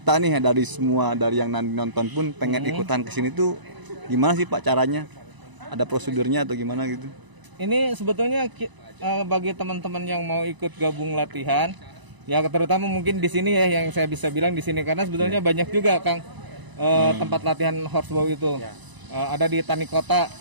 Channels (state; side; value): late; left; 1.0 ms